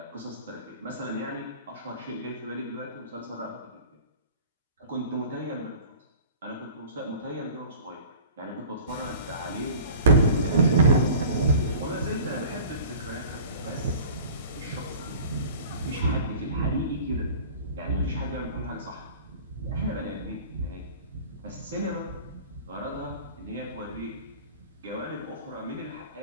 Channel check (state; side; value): inverted; both; correlation -0.42